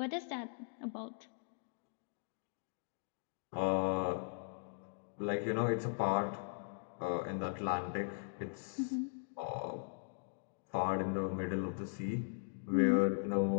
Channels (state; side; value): silent; right; digital silence